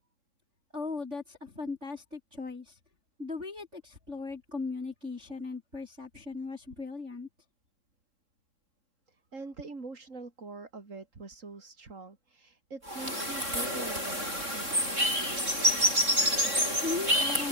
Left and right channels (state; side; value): late; left; 3.6 ms